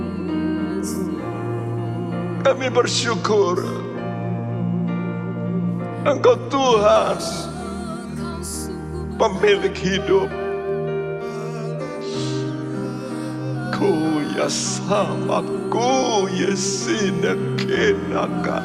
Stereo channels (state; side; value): identical; both; correlation 1.00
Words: Kami bersyukur Engkau Tuhan, pemilik hidup. Ku ya sama ku yesina